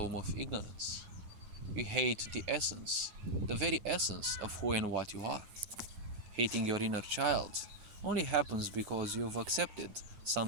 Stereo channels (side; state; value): left; late; 9.5 ms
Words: of ignorance. You hate the essence, the very essence of who and what you are. Hating your inner child only happens because you've accepted some